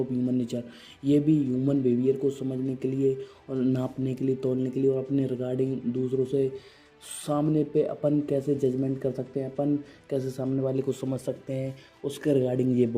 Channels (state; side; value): identical; both; correlation 1.00